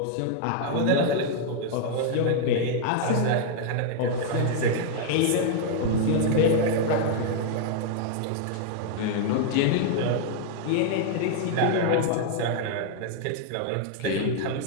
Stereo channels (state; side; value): different; both; correlation -0.01